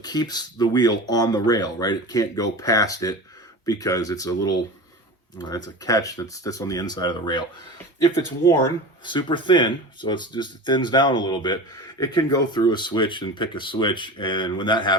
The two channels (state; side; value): normal; both; correlation 0.31